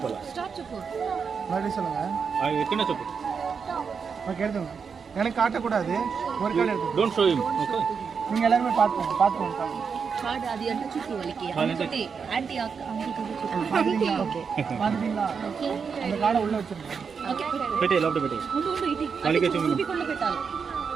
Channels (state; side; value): quieter; left; 6.0 dB